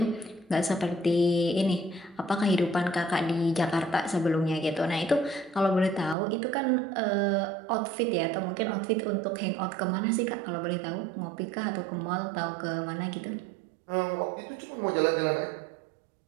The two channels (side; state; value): left; drops out; at 6.2 s